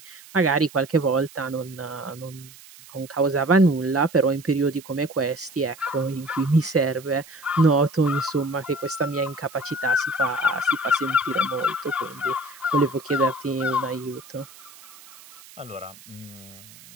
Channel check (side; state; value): right; noise; hiss, 21 dB below the sound